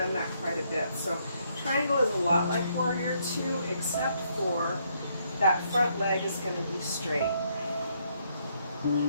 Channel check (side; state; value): both; inverted; correlation -0.73